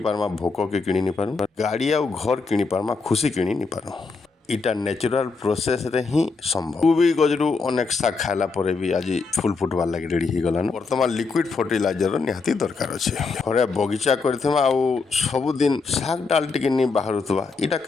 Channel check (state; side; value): quieter; right; 4.4 dB